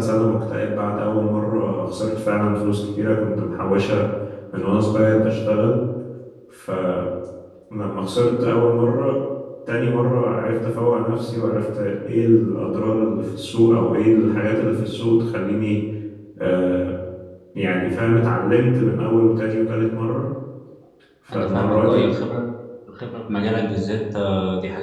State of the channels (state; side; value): identical; both; correlation 1.00